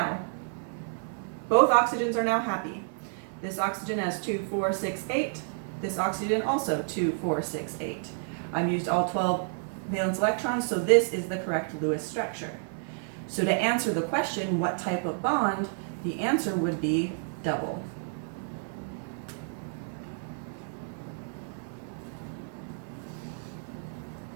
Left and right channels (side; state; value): left; silent; 58 dB below the other